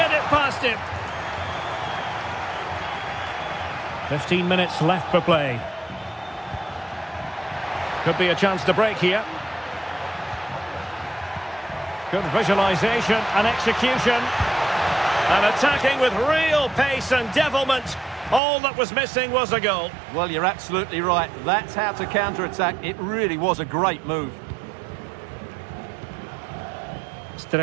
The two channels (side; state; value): left; drops out; at 18.4 s